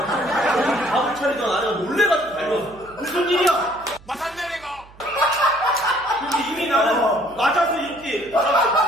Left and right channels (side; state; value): right; noise; hum, 24 dB below the sound